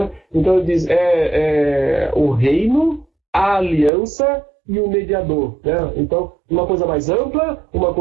Então ele diz, o reino, a aliança e o mediador, né? Então, uma coisa mais ampla, uma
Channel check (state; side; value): drops out; left; at 3.9 s